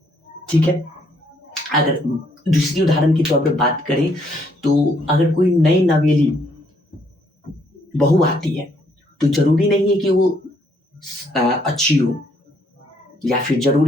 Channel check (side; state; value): both; normal; correlation 0.69